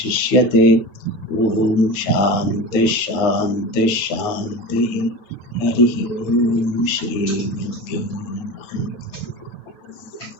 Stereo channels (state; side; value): late; right; 9.2 ms